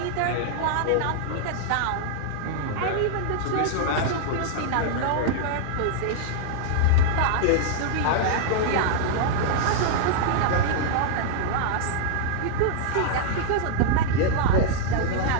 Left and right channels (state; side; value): different; both; correlation -0.01